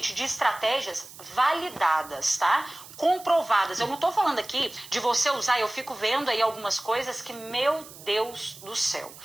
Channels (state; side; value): noise; right; hiss, 17 dB below the sound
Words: de estratégias validadas, tá? Comprovadas. Eu não tô falando aqui de você usar, eu fico vendo aí algumas coisas que, meu Deus do céu,